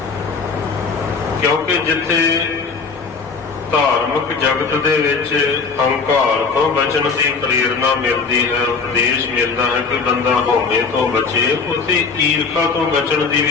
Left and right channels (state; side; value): quieter; right; 4.9 dB